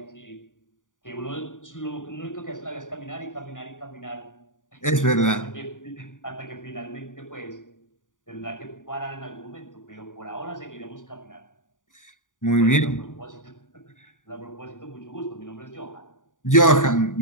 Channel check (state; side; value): late; right; 0.88 ms